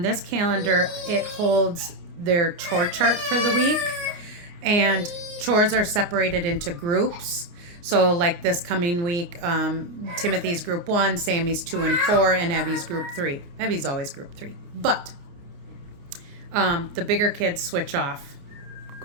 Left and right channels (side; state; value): left; late; 29 ms